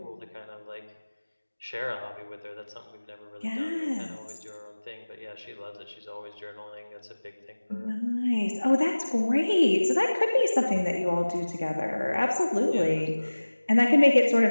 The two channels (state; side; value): inverted; both; correlation -1.00